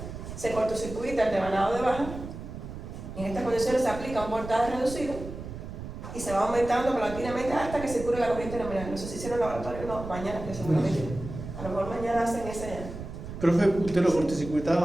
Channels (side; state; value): right; noise; rumble, 10 dB below the sound